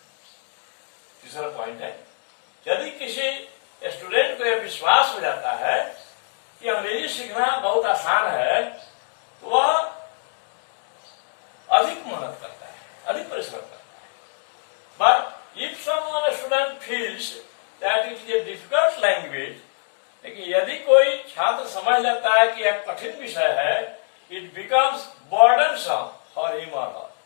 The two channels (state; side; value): silent; right; digital silence